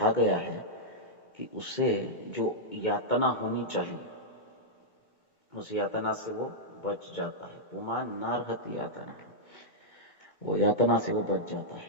गया है कि उसे जो यातना होनी चाहिए उस यातना से वो बच जाता है। पुमान नारहति यातना, वो यातना से वो बच जाता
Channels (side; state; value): right; late; 2.2 ms